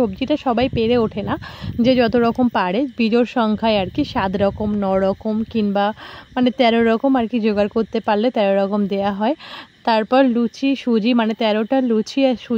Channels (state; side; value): identical; both; correlation 1.00